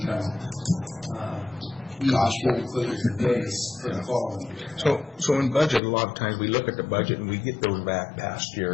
cost base for the following year. So in budget, a lot of times we look at the budget and we get those back past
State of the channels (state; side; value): drops out; right; at 5.8 s